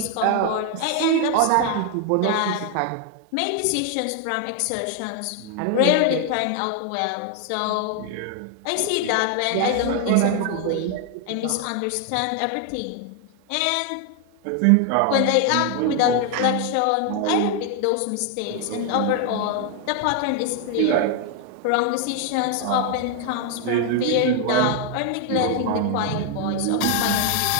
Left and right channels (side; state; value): both; different; correlation 0.01